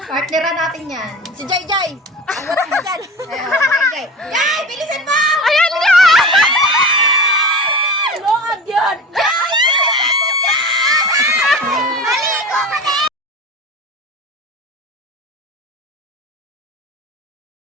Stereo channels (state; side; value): normal; both; correlation 0.31